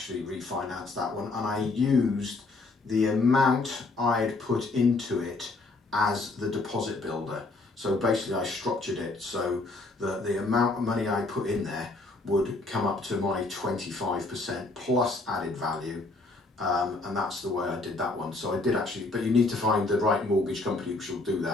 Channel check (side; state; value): right; quieter; 3.3 dB